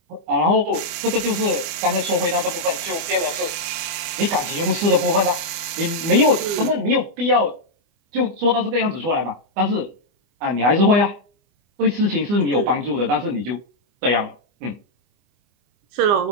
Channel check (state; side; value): late; left; 24 ms